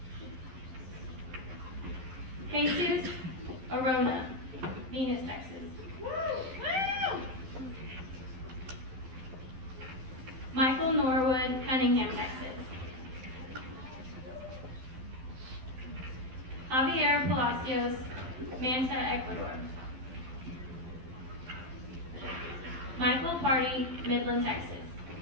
Jesus Arona, Venus, Texas. Michael Norwood, Cunningham, Texas. Javier Palacios, Manta, Ecuador. Michael Party, Midland, Texas.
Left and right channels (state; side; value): late; left; 12 ms